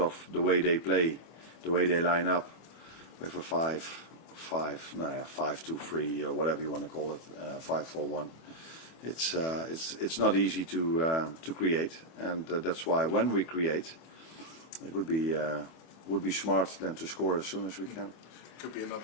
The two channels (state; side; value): late; right; 25 ms